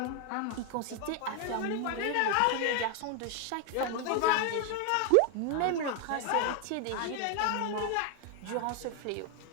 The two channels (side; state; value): both; different; correlation 0.00